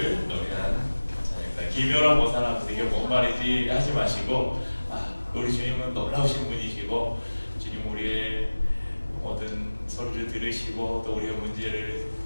노래한 찬양입니다. 기묘라 모사라면서 이게 뭔 말이지 하지 마시고, 우리 주님은 놀라우신 분이시고 주님 우리의 모든 소리를 들으시고 또 우리의 문제를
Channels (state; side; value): inverted; both; correlation -1.00